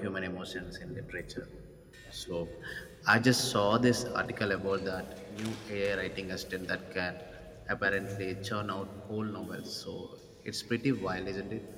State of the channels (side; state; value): both; identical; correlation 1.00